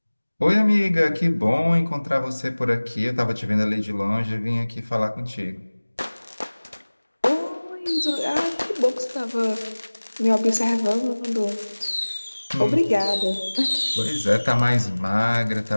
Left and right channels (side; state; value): both; inverted; correlation -1.00